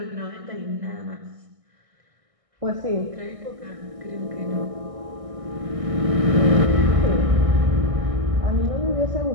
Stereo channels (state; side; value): late; left; 1.6 ms